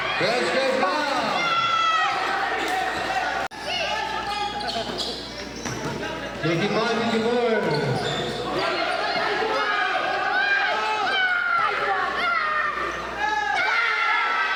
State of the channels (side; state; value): both; identical; correlation 1.00